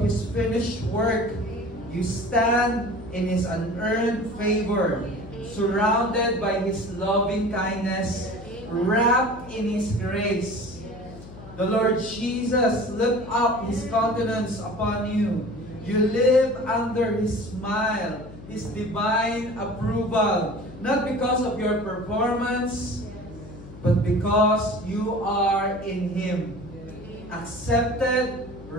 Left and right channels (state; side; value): noise; left; hum, 16 dB below the sound